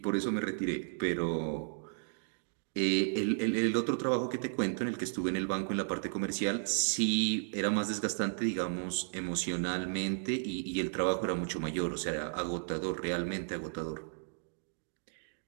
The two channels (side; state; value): left; silent; digital silence